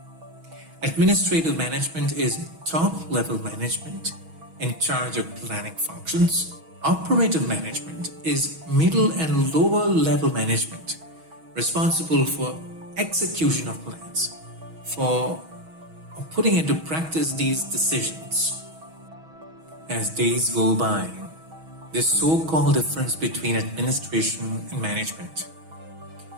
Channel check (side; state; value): left; late; 6.2 ms